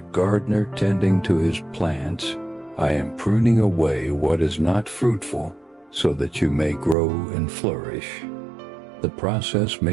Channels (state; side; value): drops out; left; at 7.0 s